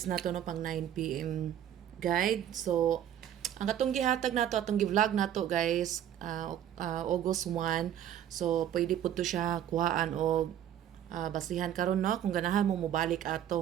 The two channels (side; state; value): left; quieter; 10.6 dB